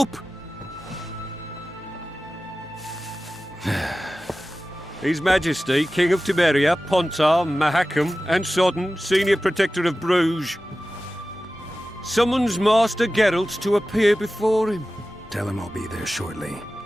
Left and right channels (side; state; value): both; normal; correlation 0.95